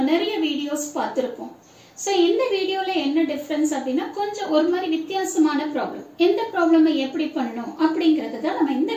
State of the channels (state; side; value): identical; both; correlation 1.00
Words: நிறைய வீடியோஸ் பார்த்திருப்போம். சோ இந்த வீடியோல என்ன டிஃபரன்ஸ் அப்படினா கொஞ்சம் ஒரு மாதிரி வித்தியாசமான ப்ராப்ளம். இந்த ப்ராப்ளமை எப்படி பண்ணனும் அப்படிங்கறத தான் நம்ம இந்த